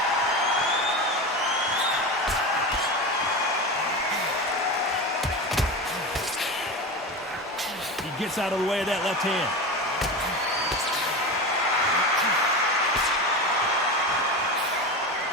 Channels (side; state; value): both; normal; correlation 0.24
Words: He gets out of the way of that left hand.